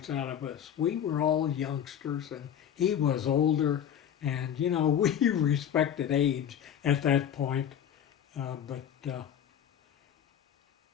out of us. We were all youngsters, and he was older. And, you know, we respected age at that point.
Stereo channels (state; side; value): quieter; right; 9.4 dB